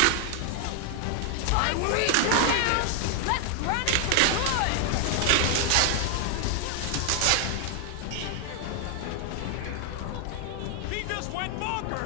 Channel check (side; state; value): both; different; correlation 0.00